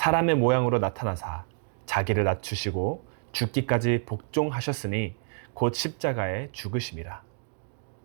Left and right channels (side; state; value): left; silent; 59 dB below the other